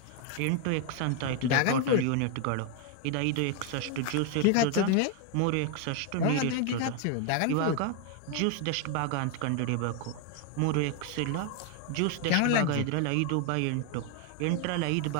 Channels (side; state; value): both; different; correlation 0.01